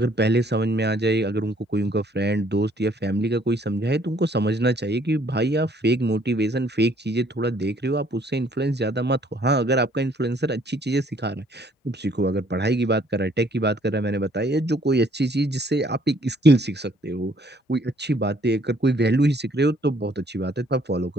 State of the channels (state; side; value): normal; both; correlation 0.63